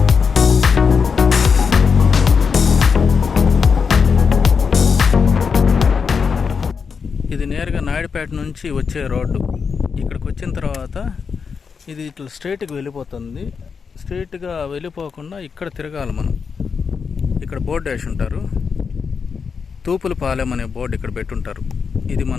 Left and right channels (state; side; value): quieter; right; 5.8 dB